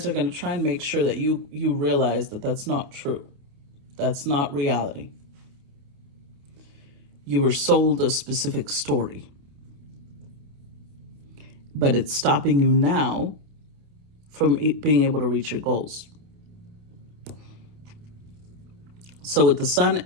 are going to try and make sure that you realize that that's not true. That's not reality. You were sold a specific story, but it's stopping you now from being able to reach your goals. So with the Sun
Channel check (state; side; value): late; left; 28 ms